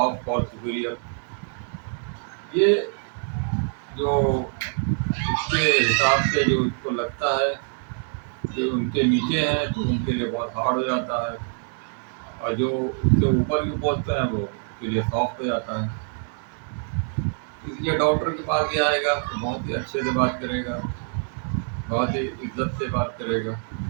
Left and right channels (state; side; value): silent; left; 57 dB below the other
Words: for superior. ये जो इसके हिसाब से जो इसको लगता है कि उनके नीचे हैं तो उनके लिए बहुत हार्ड हो जाता है, और जो उससे ऊपर की पोस्ट हैं वो उसके लिए सॉफ्ट हो जाता है। इसलिए डॉक्टर के पास ही आएगा तो बहुत ही अच्छे से बात करेगा, बहुत ही इज्जत से बात करेगा,